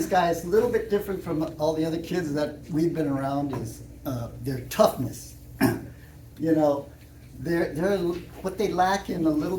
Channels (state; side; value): identical; both; correlation 1.00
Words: guys a little bit different from all the other kids that we've been around is their toughness. They're what they lack in a little